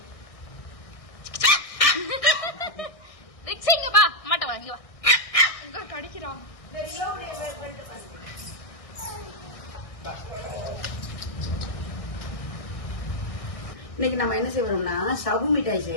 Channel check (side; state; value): right; late; 1.6 ms